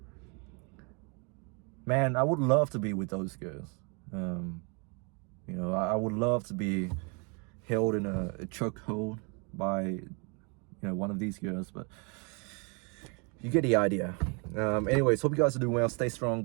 man, I would love to be with those girls. You know, I would love to be held in a chokehold by, you know, one of these girls, but you get the idea. Anyways, hope you guys are doing well. Stay strong.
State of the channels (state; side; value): quieter; left; 33.6 dB